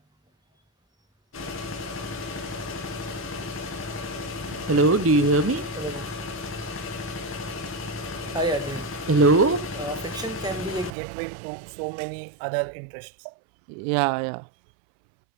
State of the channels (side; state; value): left; drops out; at 10.9 s